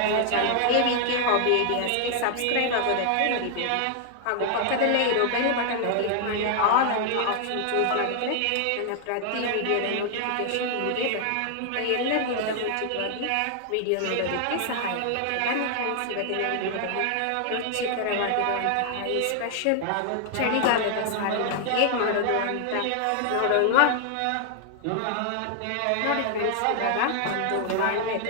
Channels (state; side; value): different; both; correlation 0.00